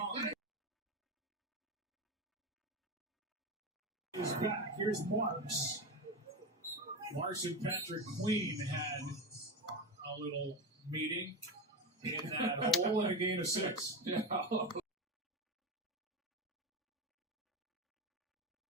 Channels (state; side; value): normal; both; correlation 0.19